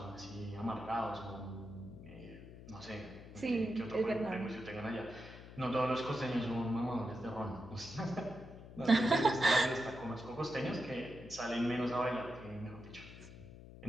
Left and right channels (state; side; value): noise; left; hum, 15 dB below the sound